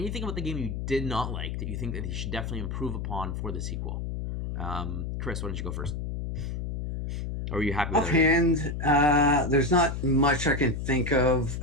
about the game you did not like that you think that he should definitely improve upon for the sequel? Chris, why don't you go first? Or are you happy with offhand? There's not much I can think of.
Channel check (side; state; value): left; noise; hum, 4 dB below the sound